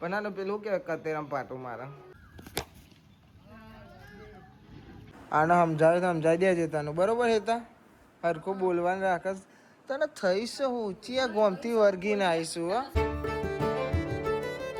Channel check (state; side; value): identical; both; correlation 1.00